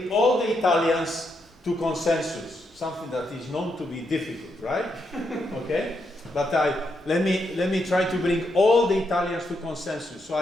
all the Italians to consensus, something that is known to be difficult, right? Okay? But let me try to bring all the Italians to consensus. So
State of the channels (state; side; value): normal; both; correlation 0.80